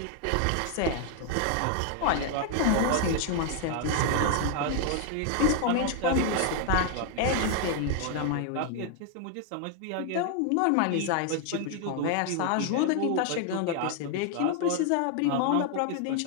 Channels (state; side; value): different; both; correlation 0.00